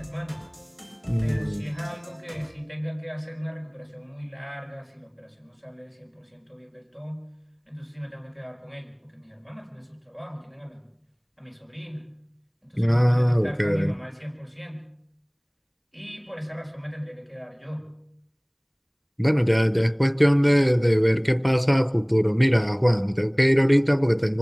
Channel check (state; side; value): identical; both; correlation 1.00